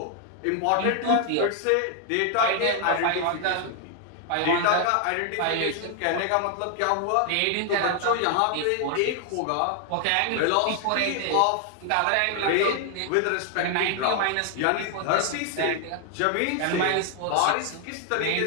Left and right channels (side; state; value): both; different; correlation 0.00